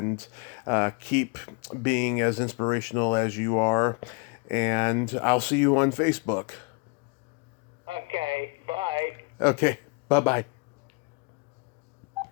keep being as inspirational as you are, and I'll see you on Facebook. Okay, bye. Okay, bye-bye.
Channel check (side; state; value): right; quieter; 30.8 dB